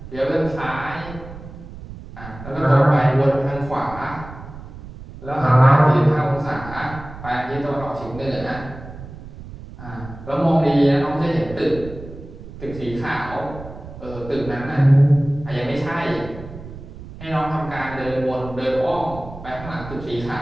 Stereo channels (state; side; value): noise; right; rumble, 14 dB below the sound